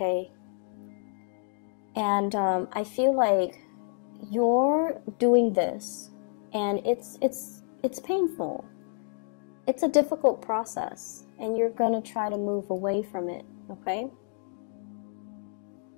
And I feel like you're doing this, and it's painful. It's a difficult process, and you're going to try to move away from it, okay?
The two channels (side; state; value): right; silent; 56 dB below the other